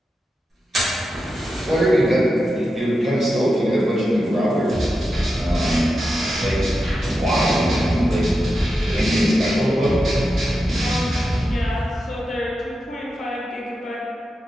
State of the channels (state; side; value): normal; both; correlation 0.89